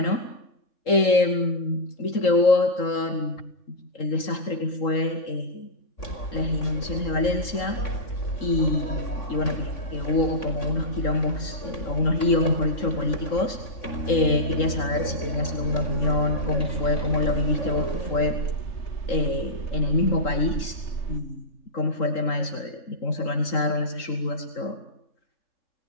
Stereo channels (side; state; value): right; late; 3.8 ms